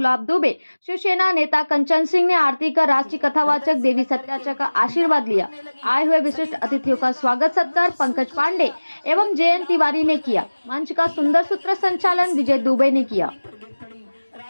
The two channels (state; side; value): inverted; both; correlation -1.00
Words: दुबे, शिवसेना नेता कंचन सिंह ने आरती कर राष्ट्रीय कथावाचक देवी सत्याचा का आशीर्वाद लिया। आए हुए विशिष्ट अतिथियों का स्वागत सत्कार पंकज पांडे एवं जयंत तिवारी ने किया। मंच का सुंदर सूत्र संचालन विजय दुबे ने किया।